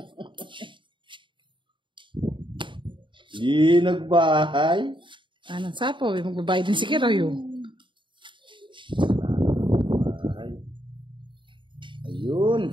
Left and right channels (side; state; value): left; late; 0.23 ms